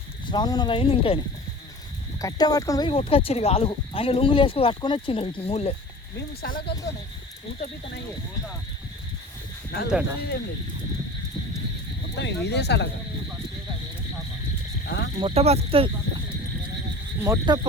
శ్రావణం అయింది. ఇంకా కట్టె పట్టుకొని పోయి కొట్టుకొచ్చారు ఇక ఆలుగు. ఆయన లుంగులు వేసుకొని కట్టుకొని వచ్చిండు వీటిని మూలే. మేము సలగలతోనే ఊత పీతనయ్యే అంతే మొత్తం ఇదే సలగ మొట్ట బతుకుతుంది, మొట్ట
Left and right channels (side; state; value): both; normal; correlation 0.39